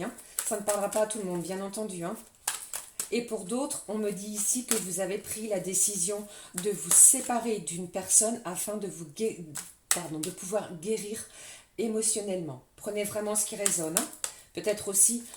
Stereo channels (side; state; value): both; identical; correlation 1.00